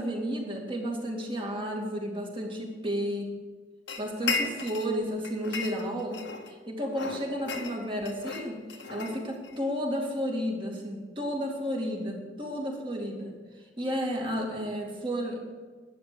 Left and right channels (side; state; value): both; normal; correlation 0.53